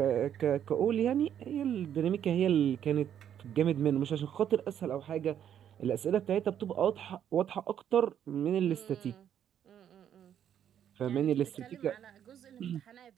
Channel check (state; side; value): quieter; left; 9.6 dB